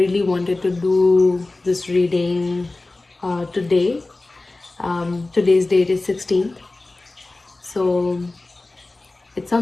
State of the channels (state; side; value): quieter; right; 3.1 dB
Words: wanted to do this reading today. Today's date is 16th, so it